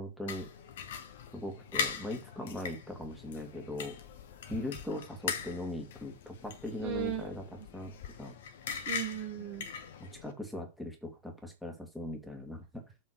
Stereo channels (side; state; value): both; normal; correlation 0.10